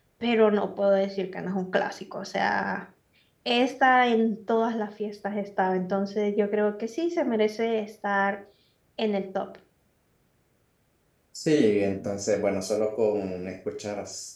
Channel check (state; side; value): identical; both; correlation 1.00